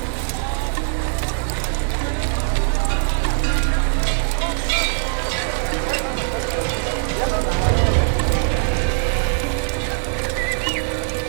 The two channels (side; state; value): left; silent; 65 dB below the other